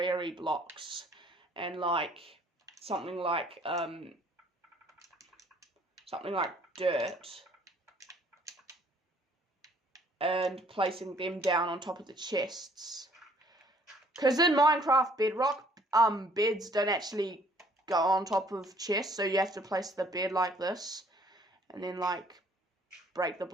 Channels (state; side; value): normal; both; correlation 0.60